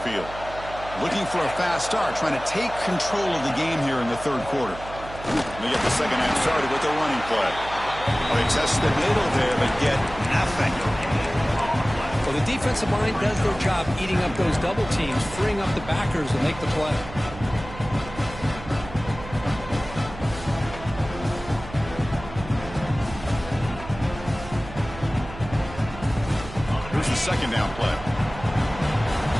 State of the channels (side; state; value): right; noise; hum, 13 dB below the sound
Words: Looking for a fast start, trying to take control of the game here in the 3rd quarter. They get the second half started with a running play. They test the middle there, but get nothing. Well, the defensive line does their job eating up those double teams, freeing up the backers to make the play. Here's the second down play.